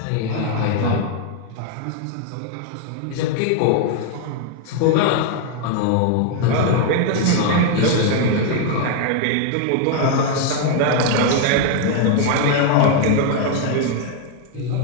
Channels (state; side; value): different; both; correlation 0.00